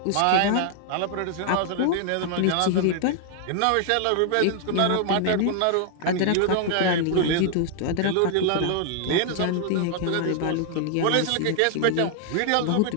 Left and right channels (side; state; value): both; different; correlation 0.00